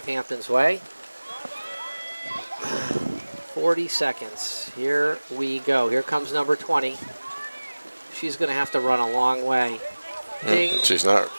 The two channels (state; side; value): inverted; both; correlation -1.00